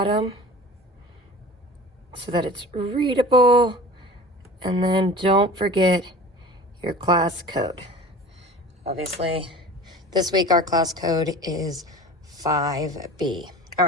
so that it's readable. And then don't forget your class code. Obviously, this week our class code is 5B. All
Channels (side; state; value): both; normal; correlation 0.39